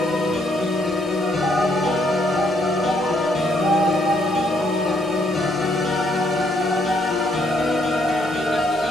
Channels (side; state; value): both; normal; correlation 0.70